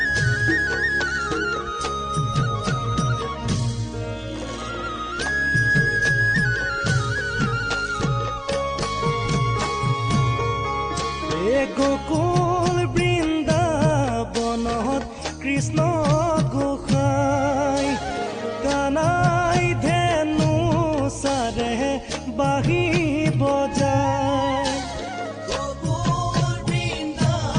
গোকুল বৃন্দাবনত কৃষ্ণ গোসাই কানাই ধেনু সাৰে বাহি বজায় গোকুল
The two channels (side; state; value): both; identical; correlation 1.00